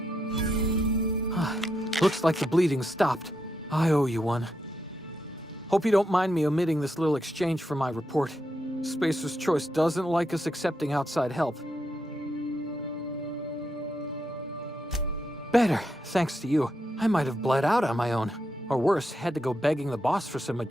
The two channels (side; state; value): both; normal; correlation 0.82